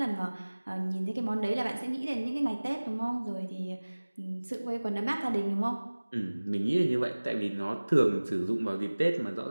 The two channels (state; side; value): inverted; both; correlation -1.00